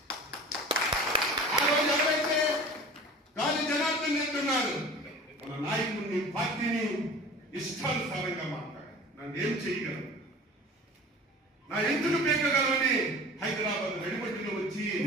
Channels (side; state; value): both; normal; correlation 0.40